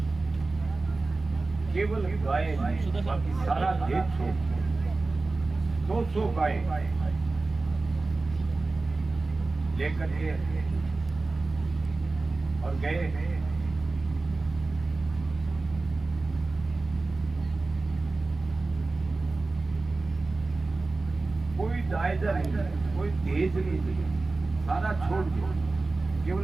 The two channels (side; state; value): left; quieter; 3.5 dB